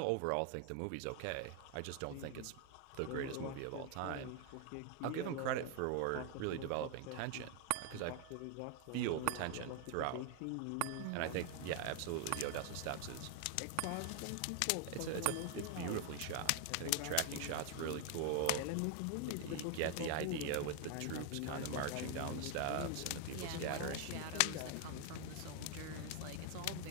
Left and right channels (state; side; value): different; both; correlation 0.00